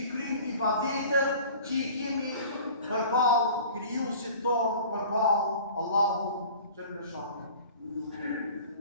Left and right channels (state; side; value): inverted; both; correlation -0.44